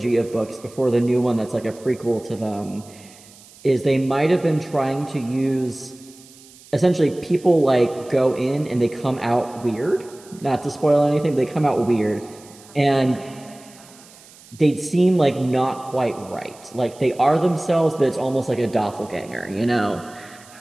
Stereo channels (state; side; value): noise; right; hiss, 23 dB below the sound